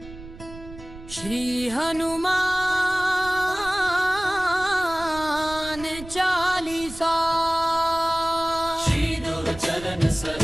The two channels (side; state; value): right; noise; rumble, 15 dB below the sound